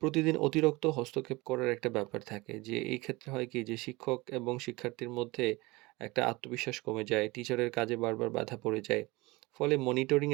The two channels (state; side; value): quieter; left; 22.7 dB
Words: অতিরিক্ত হস্তক্ষেপ করার একটা ব্যাপার থাকে যে এই ক্ষেত্রে হয় কি যে শিক্ষক এবং শিক্ষার্থীর মধ্যে একটা আত্মবিশ্বাস কমে যায়, টিচারের কাজে বারবার বাধা পড়ে যায়। ফলে মনিটরিং